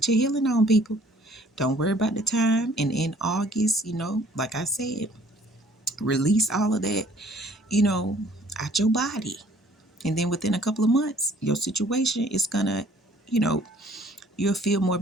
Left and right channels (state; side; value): normal; both; correlation 0.58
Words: your healing on, people. Don't worry about the time. And in August, like I said, release all of that, out your body. And then within a couple of months, your situation is gonna, you know, you'll feel more